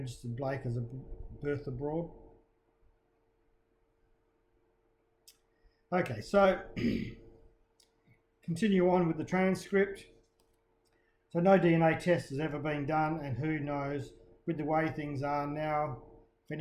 Blake as a birth abroad. Okay, so continue on with the transcript. So no DNA test has ever been done, and who knows, with the way things are now, if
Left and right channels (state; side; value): identical; both; correlation 1.00